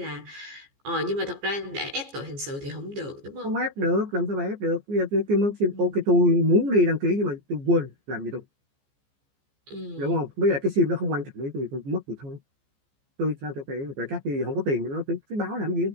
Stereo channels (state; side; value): late; left; 14 ms